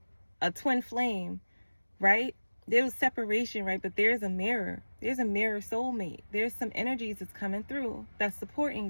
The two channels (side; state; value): both; inverted; correlation -1.00